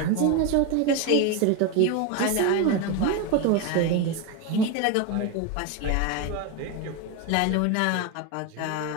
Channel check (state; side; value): different; both; correlation 0.03